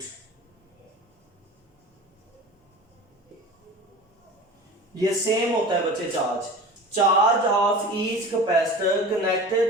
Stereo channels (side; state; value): both; normal; correlation 0.36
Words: ये सेम होता है बच्चे। Charge of each capacitor